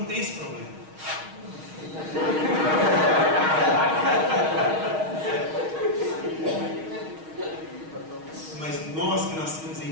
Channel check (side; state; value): left; late; 6.4 ms